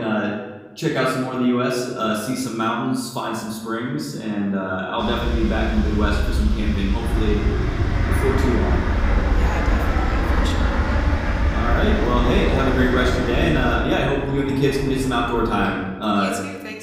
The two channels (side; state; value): both; identical; correlation 1.00